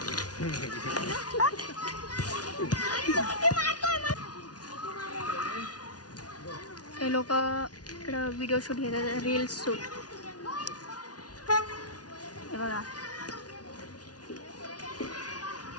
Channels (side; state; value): right; late; 0.69 ms